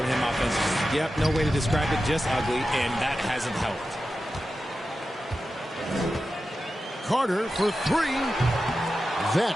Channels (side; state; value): both; normal; correlation 0.92